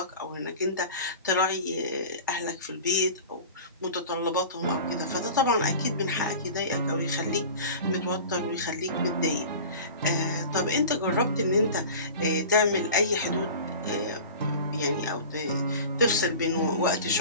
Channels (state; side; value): inverted; both; correlation -0.37